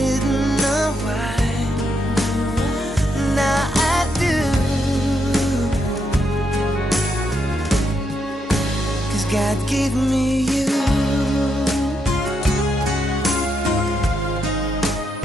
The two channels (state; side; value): normal; both; correlation 0.80